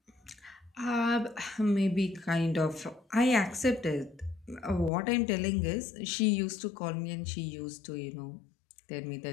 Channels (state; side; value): drops out; right; at 4.9 s